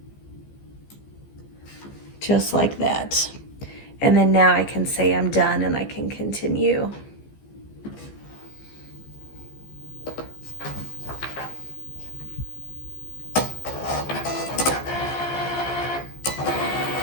Just like that. And then now I can say I'm done and I can continue.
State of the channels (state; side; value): late; right; 15 ms